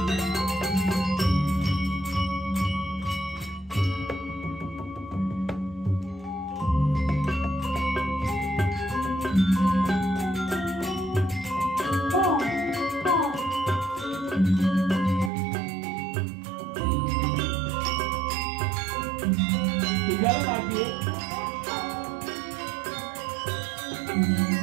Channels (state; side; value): drops out; left; at 15.3 s